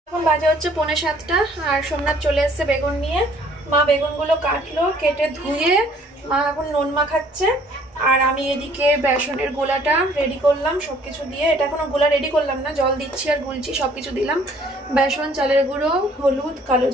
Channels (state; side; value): normal; both; correlation 0.59